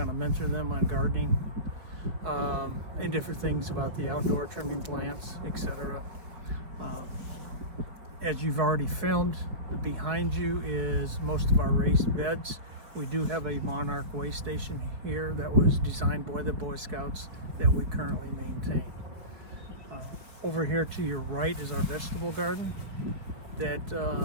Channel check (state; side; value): late; left; 4.6 ms